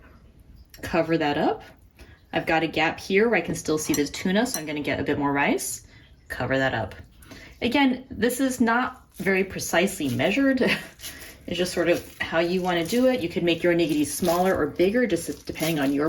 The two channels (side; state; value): both; identical; correlation 1.00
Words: cover that up. I've got a gap here where I can still see the tuna, so I'm going to get a bit more rice. Cover that up. Again, this is not very precisely measured. It's just sort of how you want to do it. You could make your onigiri smaller or bigger, just depending on